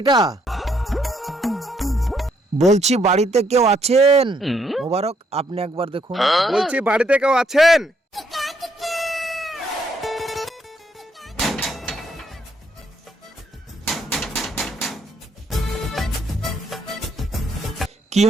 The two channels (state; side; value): normal; both; correlation 0.72